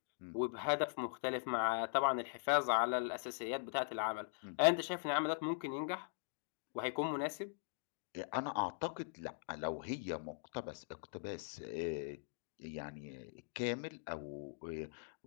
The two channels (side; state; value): right; silent; digital silence